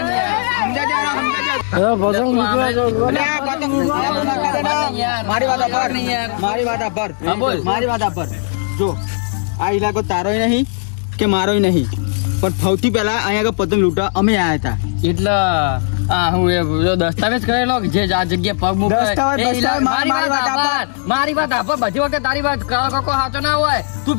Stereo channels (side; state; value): right; silent; digital silence